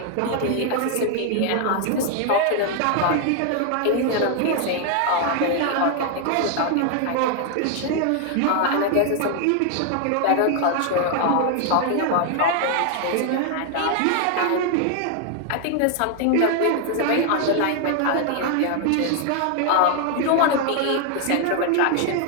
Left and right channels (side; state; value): both; different; correlation 0.00